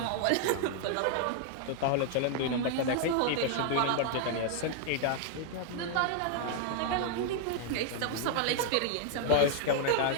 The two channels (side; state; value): both; different; correlation 0.00